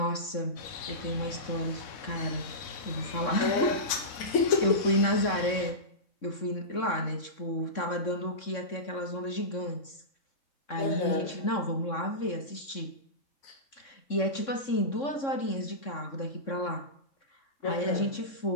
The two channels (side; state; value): right; late; 3.6 ms